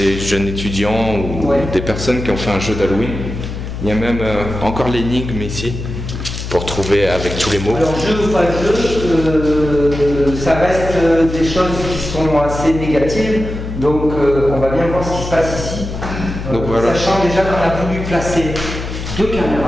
jeunes étudiants ou des personnes qui ont fait un jeu d'Halloween. Il y a même encore l'énigme ici pour trouver avec tous les mots. Alors jeu ou pas jeu, ça reste des choses qui sont assez négatives. Donc on va bien voir ce qui se passe ici. Donc, voilà. Sachant déjà qu'on a voulu placer 2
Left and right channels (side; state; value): left; noise; hum, 7 dB below the sound